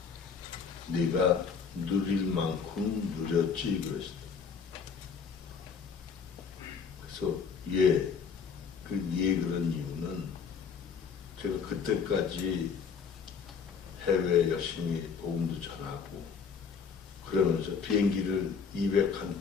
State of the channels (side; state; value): right; quieter; 6.1 dB